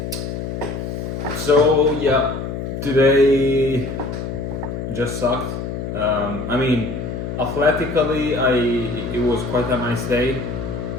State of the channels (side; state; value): left; noise; hum, 5 dB below the sound